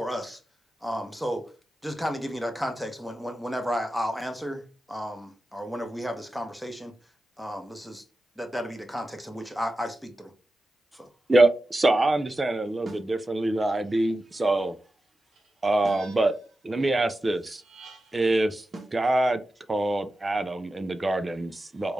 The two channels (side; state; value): both; normal; correlation 0.92